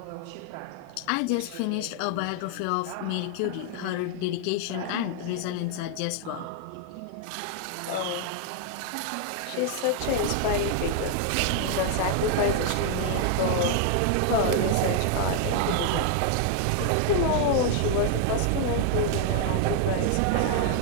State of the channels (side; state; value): both; different; correlation 0.00